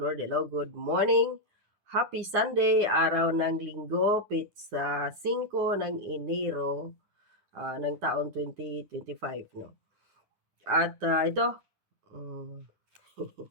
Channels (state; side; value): late; left; 9.9 ms